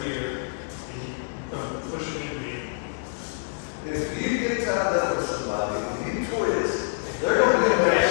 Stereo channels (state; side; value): silent; right; digital silence